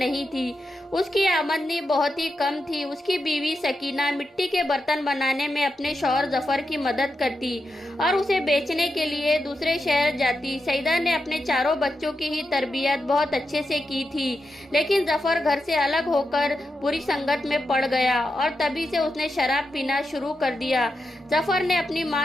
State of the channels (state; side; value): normal; both; correlation 0.87